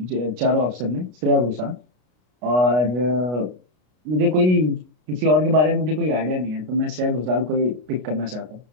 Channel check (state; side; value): late; left; 33 ms